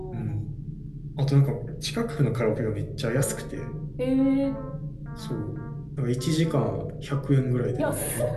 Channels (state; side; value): identical; both; correlation 1.00